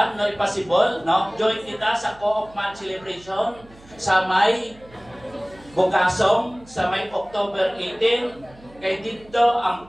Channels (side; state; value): right; noise; hum, 24 dB below the sound